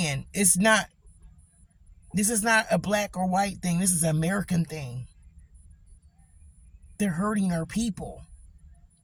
this is not a black or white thing. This is an American thing. They're hurting our people,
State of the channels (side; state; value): both; identical; correlation 1.00